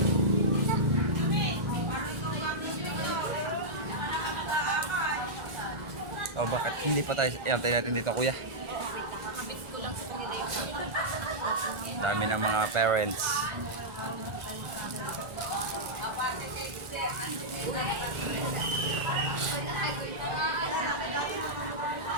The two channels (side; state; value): left; late; 1.4 ms